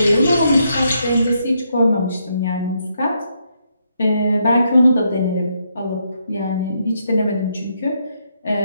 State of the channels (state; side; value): inverted; both; correlation -0.78